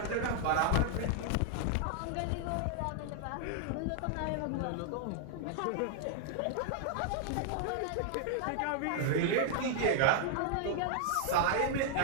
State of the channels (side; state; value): both; different; correlation -0.01